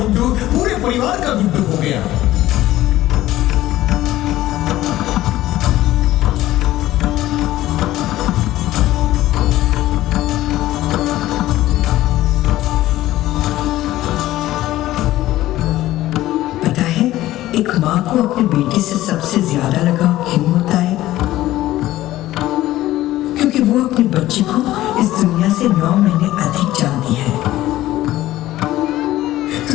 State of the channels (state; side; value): quieter; right; 15.3 dB